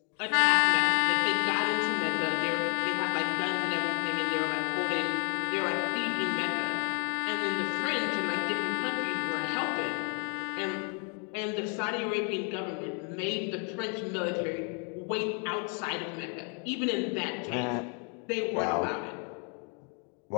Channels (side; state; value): right; quieter; 39.3 dB